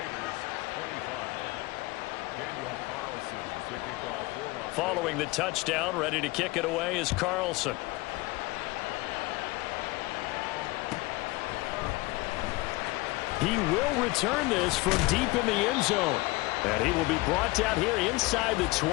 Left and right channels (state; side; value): quieter; right; 22.1 dB